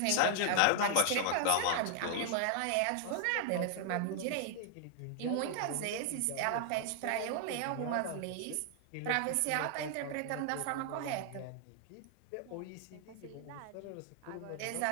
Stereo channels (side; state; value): both; different; correlation 0.00